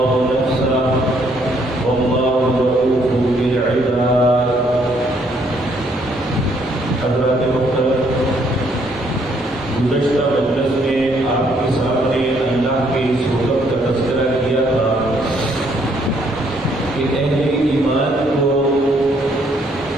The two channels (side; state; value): both; normal; correlation 0.68